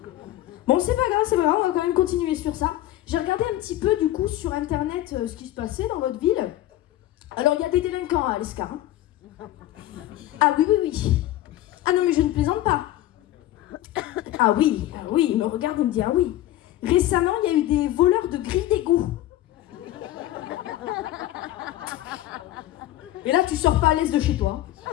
Bon, c'est pas grave, on va quand même continuer sur ça. J'ai regardé un petit peu du coup sur internet ce qui se passait dans votre ville. Alors, il y a des délinquants à l'Escar. Hein. Ah oui. Ah non, mais je ne plaisante pas. Ah oui, il me regarde et me dit ah oui. Récemment, il y a eu des voleurs de grilles d'égout. Et là, tu sors pas à l'aise de chez toi.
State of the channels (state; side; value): quieter; right; 14.3 dB